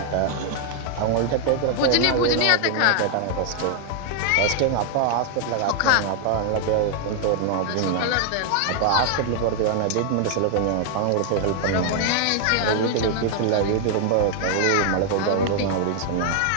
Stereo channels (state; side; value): different; both; correlation 0.00